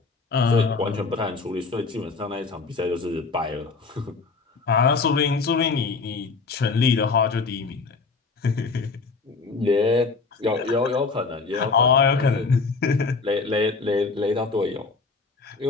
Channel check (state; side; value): quieter; right; 4.3 dB